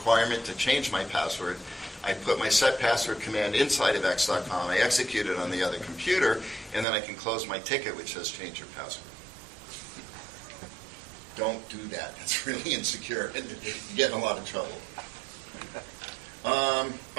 to change my password. I put my set password command inside of x.com, I execute it on the other computer, and then I can close my ticket which says change your password. Don't do that. That's really insecure and you get in a lot of trouble.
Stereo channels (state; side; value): drops out; left; at 6.9 s